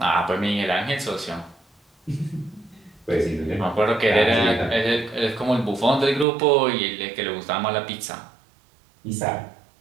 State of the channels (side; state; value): left; drops out; at 6.2 s